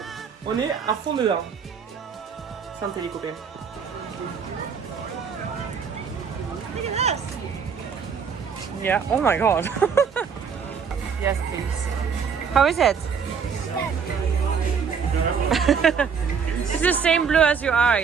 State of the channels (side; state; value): left; quieter; 6.4 dB